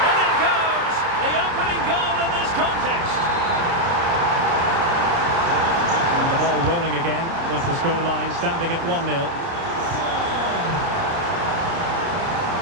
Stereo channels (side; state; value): left; late; 29 ms